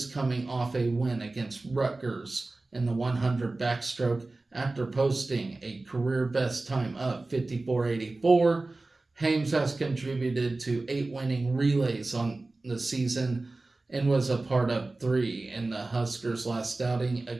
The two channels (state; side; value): quieter; left; 3.2 dB